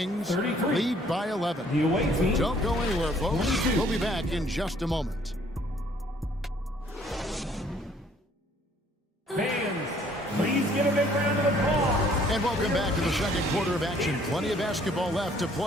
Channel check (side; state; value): both; normal; correlation 0.60